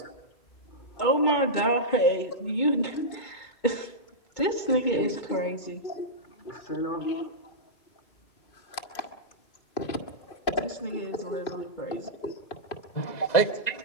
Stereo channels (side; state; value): right; late; 2.2 ms